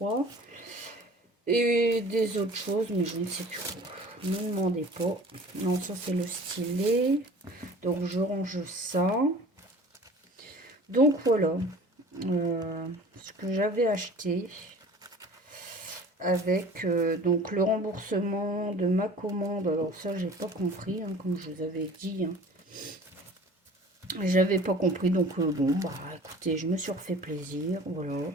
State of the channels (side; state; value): both; normal; correlation 0.45